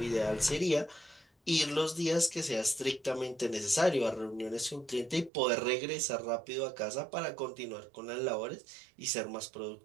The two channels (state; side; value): drops out; left; at 5.3 s